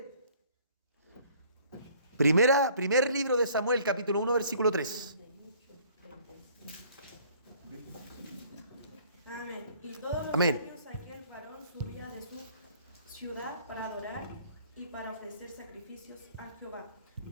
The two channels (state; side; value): inverted; both; correlation -0.57